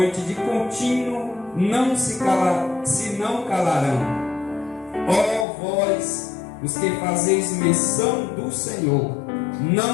de contínuo se não calarão. Ó vós, os que fazeis menção do Senhor,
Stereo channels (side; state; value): right; drops out; at 5.5 s